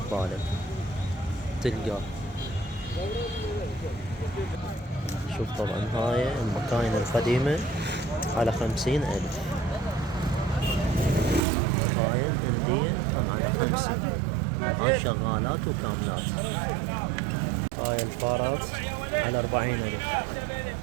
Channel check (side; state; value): left; drops out; at 11.4 s